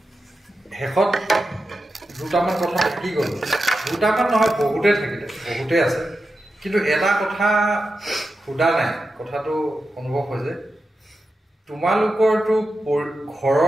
শেষত দুটামান কথা থাকি গ'ল দুটামান নহয় বহুতেই থাকিলে বহুতেই আছে কিন্তু এটা কথা সোধা নাই কথাটো অনুভৱ হৈছে তোমালোকৰতো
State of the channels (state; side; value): normal; both; correlation 0.90